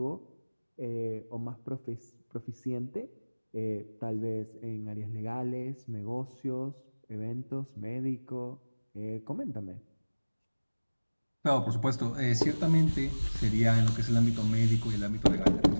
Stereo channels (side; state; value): both; inverted; correlation -1.00